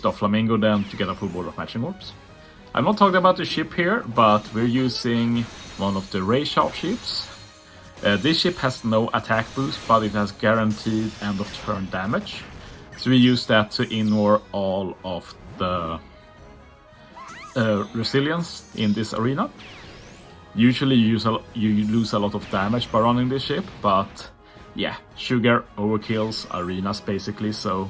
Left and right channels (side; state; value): both; identical; correlation 1.00